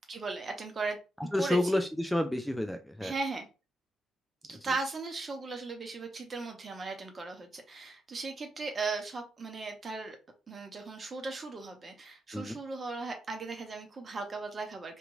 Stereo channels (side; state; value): both; normal; correlation 0.87